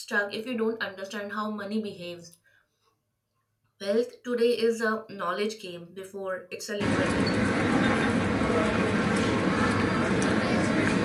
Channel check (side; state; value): both; identical; correlation 1.00